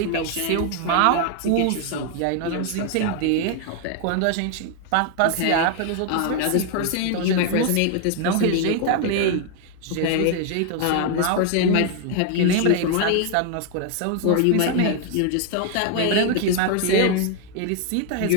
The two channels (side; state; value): both; different; correlation 0.00